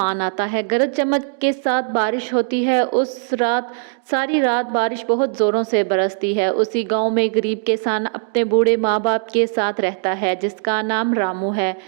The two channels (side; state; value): left; silent; digital silence